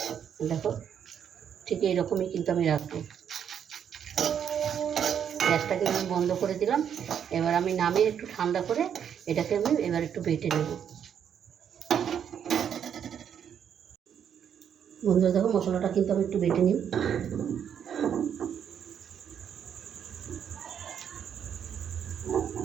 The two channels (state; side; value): quieter; left; 8.5 dB